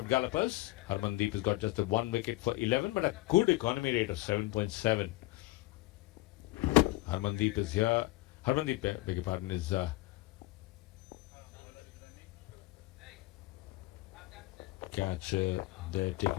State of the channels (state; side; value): quieter; right; 19.2 dB